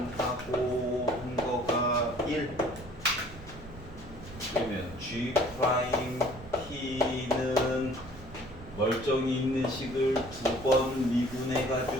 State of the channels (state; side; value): noise; right; rumble, 16 dB below the sound